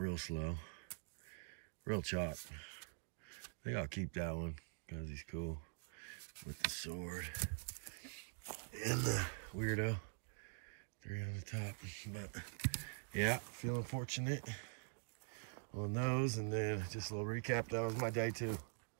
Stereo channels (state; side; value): silent; left; digital silence